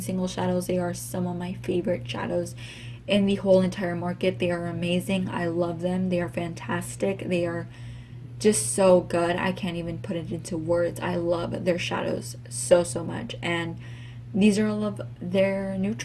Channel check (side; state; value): both; identical; correlation 1.00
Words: single shadows. They are some of my favorite shadows in the whole entire market. They are amazing. I love them. They are fantastic. They are just so good. I can't even put it into words. I love their shadows so much, and these are all of their